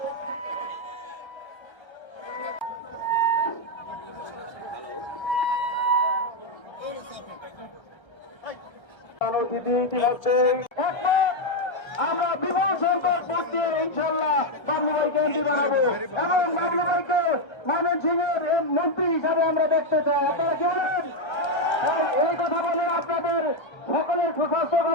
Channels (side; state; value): right; late; 1.3 ms